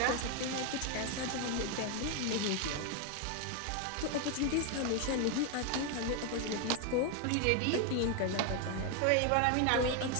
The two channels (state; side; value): different; both; correlation 0.01